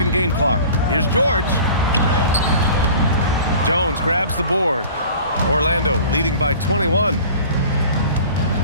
and game clock. Here's George. Jones grabs the board. Orlando leading by 21.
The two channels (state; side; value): inverted; both; correlation -0.43